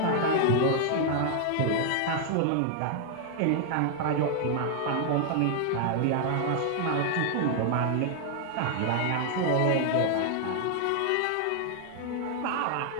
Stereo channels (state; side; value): different; both; correlation 0.00